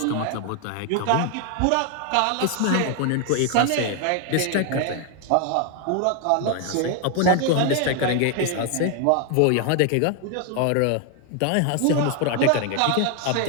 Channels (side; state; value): both; different; correlation 0.00